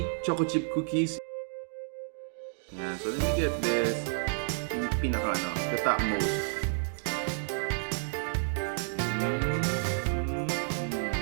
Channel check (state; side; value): silent; left; digital silence